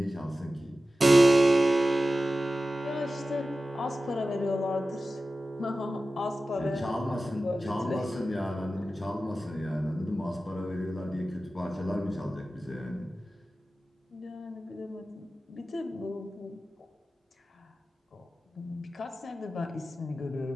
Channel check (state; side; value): normal; both; correlation 0.94